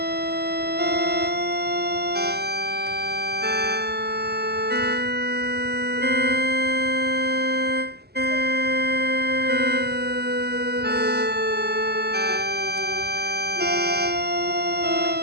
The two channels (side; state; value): left; late; 0.47 ms